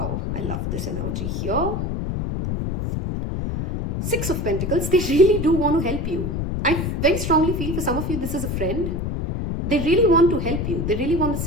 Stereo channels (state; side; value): noise; left; rumble, 2 dB below the sound